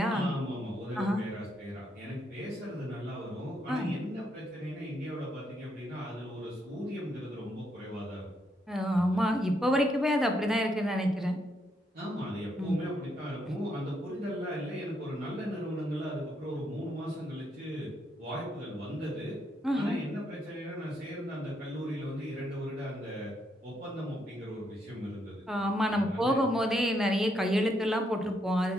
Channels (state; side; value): normal; both; correlation 0.76